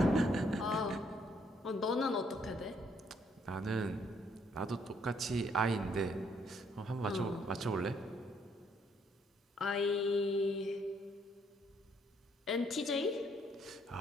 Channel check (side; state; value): both; normal; correlation 0.69